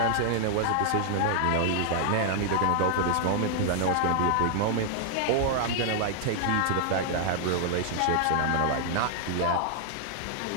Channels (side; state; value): both; different; correlation -0.01